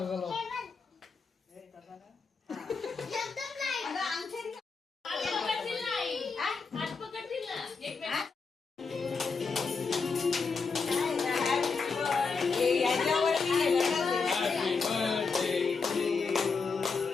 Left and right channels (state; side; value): quieter; right; 4.8 dB